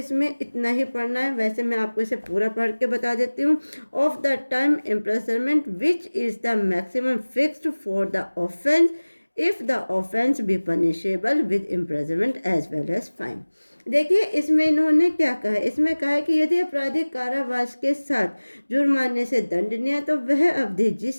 इतना ही पढ़ना है। वैसे मैं आपको इसे पूरा पढ़ के बता देती हूँ। Of the term imprisonment which is the maximum fixed for the offence if the offence be punishable with imprisonment as well as fine. देखिए इसमें इन्होंने क्या कहा है, इसमें कहा है कि यदि अपराधी कारावास के साथ जुर्माने से दंडनीय है तो वह अवधि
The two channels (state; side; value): inverted; both; correlation -1.00